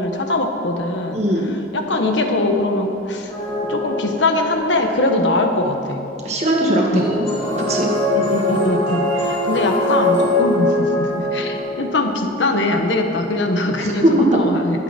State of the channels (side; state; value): both; normal; correlation 0.29